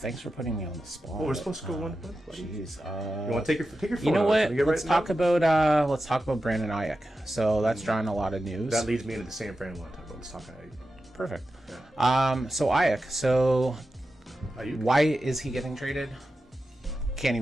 for putting me on the spot. Oh, we're supposed to go one. Jeez. You want to take your phone? You know out? what? Can we get Let's right talk now? about Brandon Ayuk. So that's drawing a lot of news. That leads me into the San Fran one. Let's talk about. Perfect. Yeah. So Ayuk. So Ayuk? why is he getting traded? Can't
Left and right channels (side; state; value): both; normal; correlation 0.92